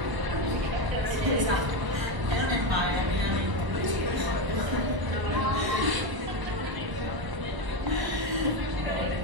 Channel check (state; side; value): late; left; 1.0 ms